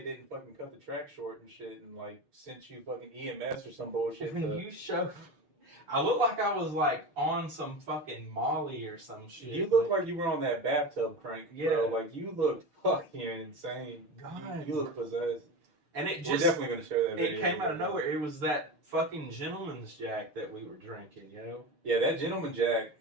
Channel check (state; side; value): late; left; 6.7 ms